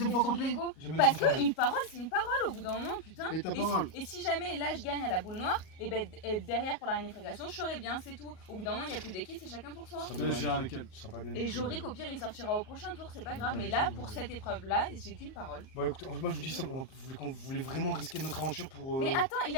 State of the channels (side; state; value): right; late; 38 ms